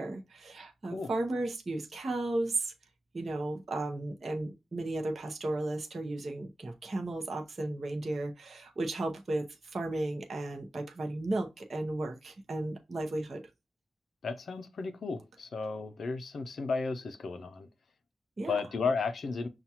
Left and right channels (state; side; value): normal; both; correlation 0.89